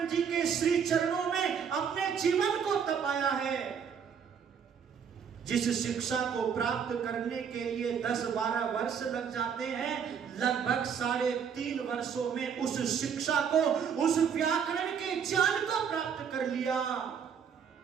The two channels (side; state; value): left; quieter; 7.2 dB